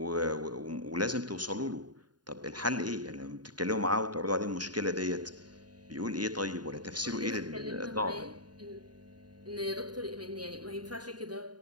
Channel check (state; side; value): late; left; 0.70 ms